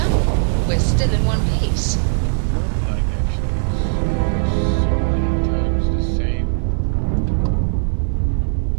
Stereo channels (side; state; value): left; silent; digital silence